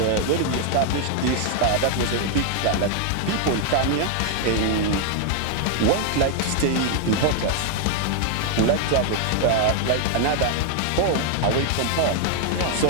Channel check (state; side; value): different; both; correlation 0.00